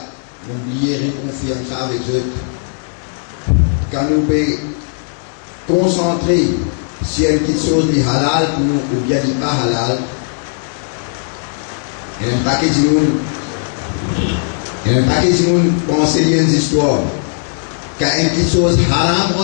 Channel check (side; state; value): right; silent; digital silence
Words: n'oubliez réconfirme ça avec eux. Quand nous pouvons concentrer sur une petite chose de halal pour nous ou bien de pas halal, il y a un paquet de monde penser lier des histoires. Quand une petite chose haram